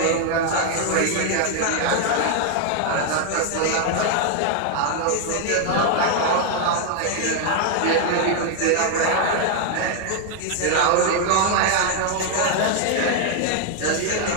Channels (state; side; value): different; both; correlation 0.00